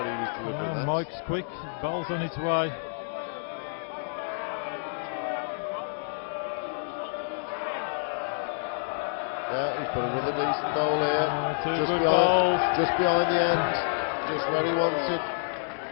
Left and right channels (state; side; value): silent; right; digital silence